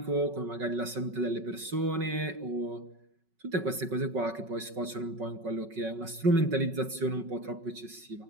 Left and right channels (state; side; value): late; left; 5.3 ms